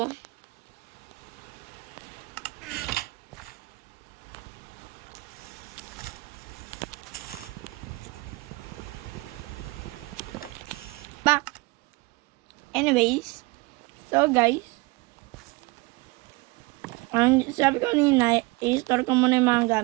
Back. Anyways. So guys. Ang sabi ko kanina, i-store ko muna yung mga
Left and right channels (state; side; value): quieter; left; 24.2 dB